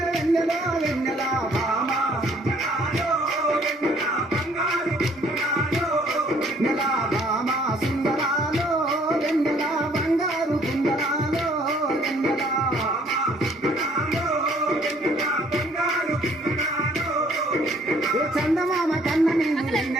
వెన్నెల వెన్నెల భామా నెల భామా సుందరాలో వెన్నెల బంగారు కుందరాలో వెన్నెల ఓ చందమామ కన్న నీవు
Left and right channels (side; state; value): both; normal; correlation 0.61